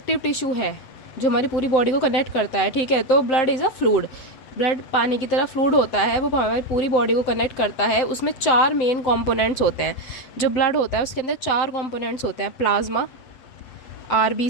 टिश्यू है जो हमारी पूरी बॉडी को कनेक्ट करता है। ठीक है, तो blood is a fluid. Blood पानी की तरह फ्लूइड होता है, वो हमारी पूरी बॉडी को कनेक्ट करता है। उसमें 4 मेन कंपोनेंट्स होते हैं। जो ब्लड होता है उसके अंदर 4 कंपोनेंट्स होते हैं: प्लाज्मा,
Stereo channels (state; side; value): late; right; 8.0 ms